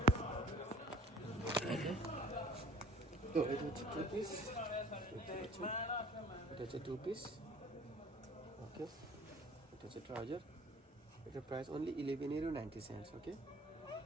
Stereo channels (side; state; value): both; normal; correlation 0.49